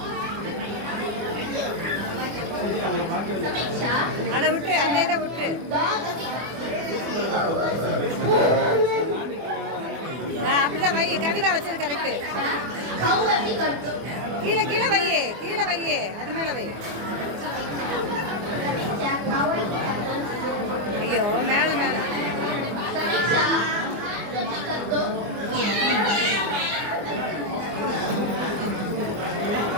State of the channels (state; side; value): late; left; 24 ms